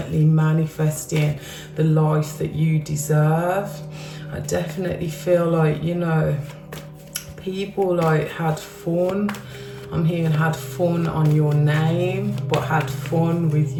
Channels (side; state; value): both; identical; correlation 1.00